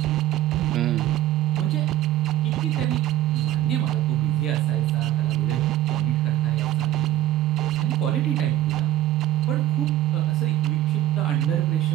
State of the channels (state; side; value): quieter; left; 13.5 dB